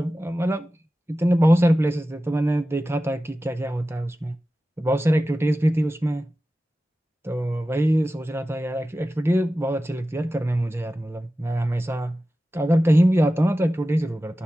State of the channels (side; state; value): both; normal; correlation 0.95